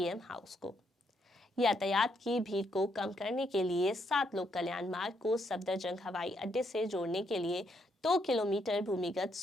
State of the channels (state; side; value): normal; both; correlation 0.75